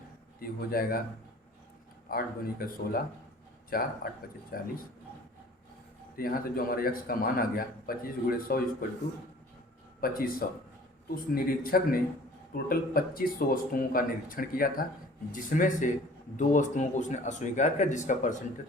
ये हो जाएगा 8 दूनी का 16, 4 8 25 40। तो यहाँ से जो हमारे x का मान आ गया 25 × 100 इक्वल टू 2500। तो उस निरीक्षक ने टोटल 2500 वस्तुओं का निरीक्षण किया था, जिसमें से 2 वस्तुओं को उसने अस्वीकार किया, जिसका परसेंटेज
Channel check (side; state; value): both; normal; correlation 0.49